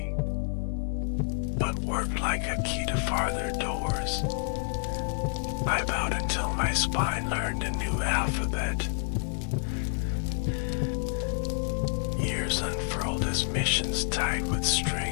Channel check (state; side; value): silent; right; digital silence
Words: but worked like a key to farther doors. I bowed until my spine learned a new alphabet. Years unfurled as missions tied with